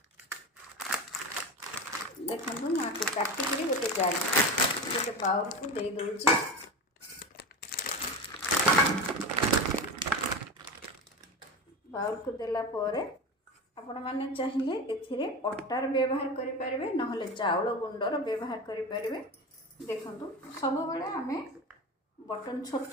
देखो मुझे काटिक गोटे जार गोटे बाउल को दे दूची। बाउल को देला परे आपण माने चाहिए एथिरे अटार व्यवहार करि परिबे नहले चाउल गुंडर व्यवहार करि परिबे। देखंतु सब बेले आमे बटन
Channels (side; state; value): both; normal; correlation 0.25